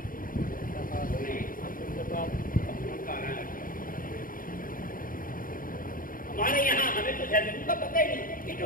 ہمارے یہاں ہمیں تو زیتون کا پتہ ہی نہیں کہ جو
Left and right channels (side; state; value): right; late; 0.40 ms